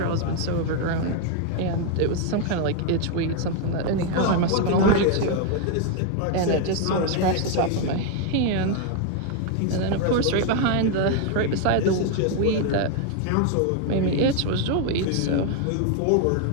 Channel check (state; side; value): different; both; correlation 0.01